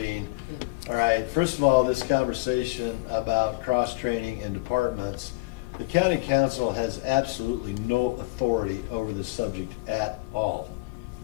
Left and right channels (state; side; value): quieter; right; 24.7 dB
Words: All right, first of all, this conversation about cross-training in departments, the county council has absolutely no authority over this subject at all.